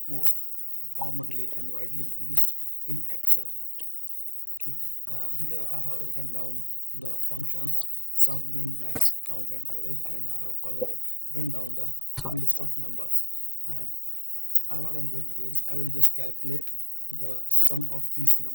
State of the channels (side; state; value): both; normal; correlation 0.75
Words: most commonly and widely used in Excel. Okay, here I have written down the functions sum, min, max, count and average, and I have further written down some list of numbers. And what I'm going to do is I will just calculate the sum of these